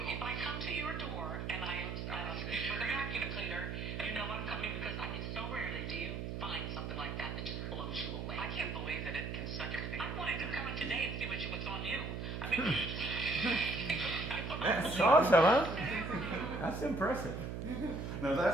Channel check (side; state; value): right; noise; hum, 4 dB below the sound